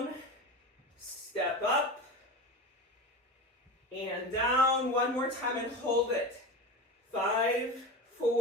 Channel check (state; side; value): normal; both; correlation 0.26